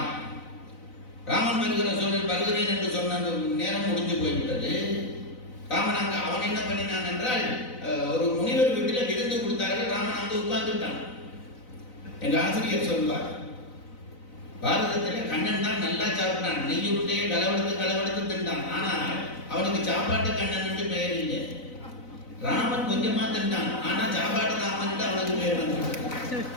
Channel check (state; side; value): late; right; 4.0 ms